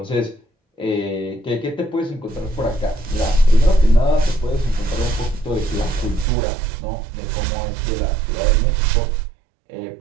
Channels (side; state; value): left; drops out; at 6.2 s